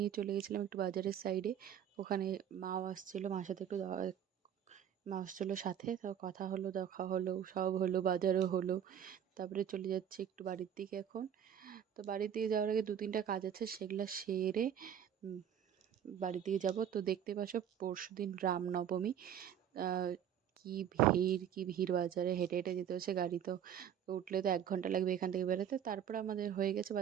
চলে গেছিলাম একটু বাজারের সাইডে। ওখানে মাও আসছিলো, মার সাথে একটু মা আসছিলো সাথে, তো কথা হলো, দেখা হলো, সব হলো, বাজারও হলো। তারপরে চলে যাচ্ছি একটু বাড়ির দিকে এখন। তো বাড়ির দিকে যাওয়ার আগে দু তিনটা কাজ আছে, সেগুলো সেরে উম, বাড়ির দিকে যাব। তো দেখতে পাচ্ছ পরশুদিন রামনবমী। আহ, কি ভিড় বাজারে, হেঁটে হেঁটে যেতে হচ্ছে, গাড়ি তো তো উঠলে তো 1 ঘন্টা লাগবে এখান থেকে বেরোতে। তারপরে আমাদের হয়ে গেছে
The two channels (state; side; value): quieter; left; 9.4 dB